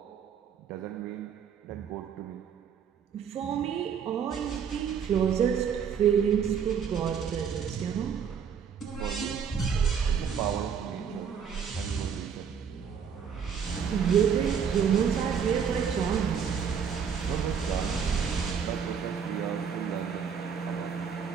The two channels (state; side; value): quieter; left; 7.2 dB